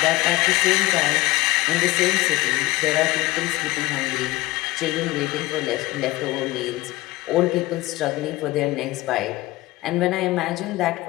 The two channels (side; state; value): right; quieter; 19.3 dB